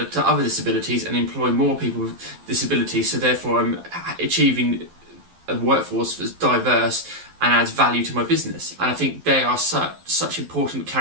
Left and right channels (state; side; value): late; left; 12 ms